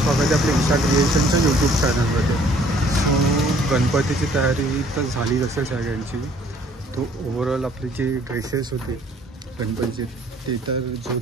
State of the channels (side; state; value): both; normal; correlation 0.59